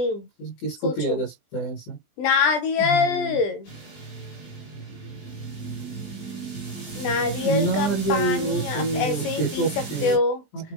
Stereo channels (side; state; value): right; late; 20 ms